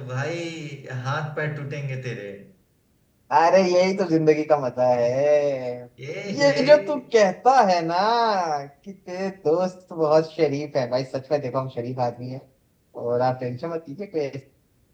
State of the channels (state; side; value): identical; both; correlation 1.00